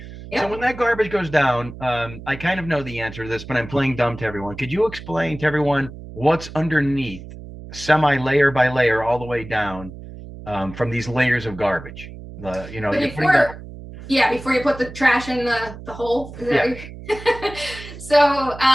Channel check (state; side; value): noise; right; hum, 14 dB below the sound